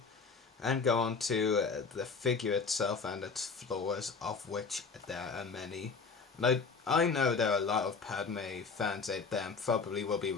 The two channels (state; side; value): quieter; right; 4.9 dB